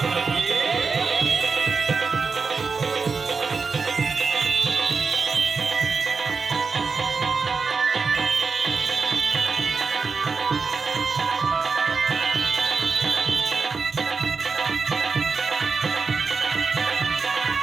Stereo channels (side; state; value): left; quieter; 4.8 dB